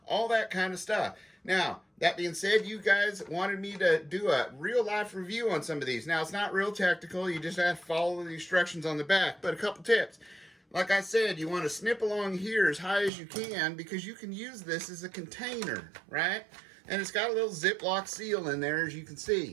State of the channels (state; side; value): drops out; left; at 13.1 s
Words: all that kind of stuff. Now, that being said, you guys wanted me to do a real-life review on some of these. Now, it's not real technical. You just have to follow the instructions on the back. But a couple tips. Like I said, you want to snip along here as high as you can because you can use this as a container, right? And it's got a little Ziploc seal in there, as you can